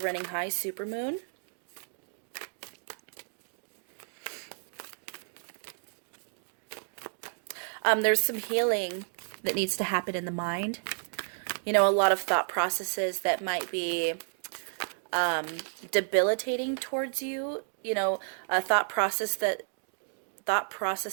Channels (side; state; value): left; silent; digital silence